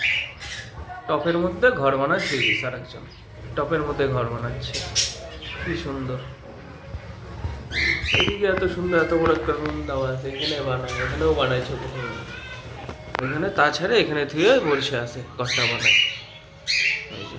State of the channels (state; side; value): identical; both; correlation 1.00